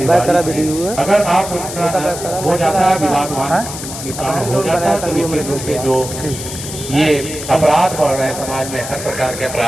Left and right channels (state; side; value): noise; left; hiss, 9 dB below the sound